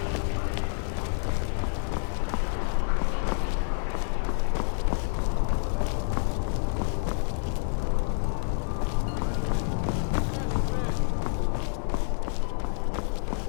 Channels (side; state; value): right; silent; digital silence